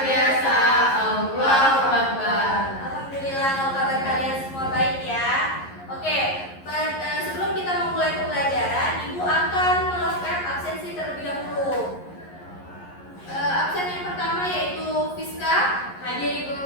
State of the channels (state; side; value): late; right; 11 ms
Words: biasa. Allahu Akbar. Alhamdulillah kalau kabar kalian semua baik ya. Oke, sebelum kita memulai pembelajaran, Ibu akan melakukan absensi terlebih dahulu. Absen yang pertama yaitu Fiska. Hadir, Ibu.